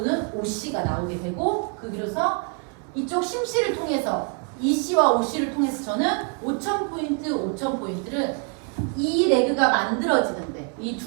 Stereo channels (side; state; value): left; quieter; 37.8 dB